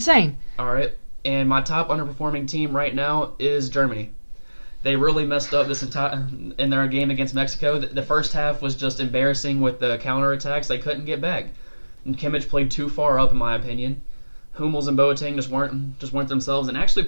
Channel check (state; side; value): inverted; both; correlation -1.00